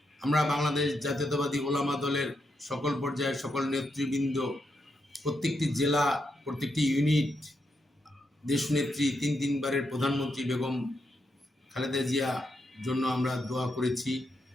আমরা বাংলাদেশ জাতীয়তাবাদী ওলামা দলের সকল পর্যায়ের সকল নেতৃবৃন্দ, প্রত্যেকটি জেলা, প্রত্যেকটি ইউনিট দেশনেত্রী তিনবারের প্রধানমন্ত্রী বেগম খালেদা জিয়া জন্য আমরা দোয়া করেছি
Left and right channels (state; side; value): normal; both; correlation 0.82